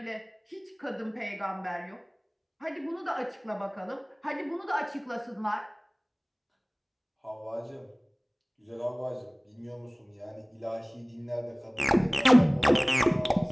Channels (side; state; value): both; identical; correlation 1.00